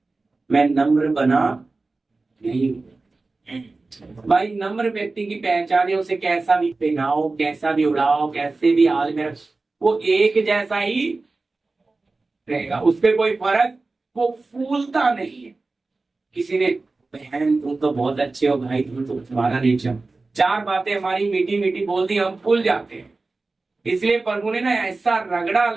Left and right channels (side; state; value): left; quieter; 3.5 dB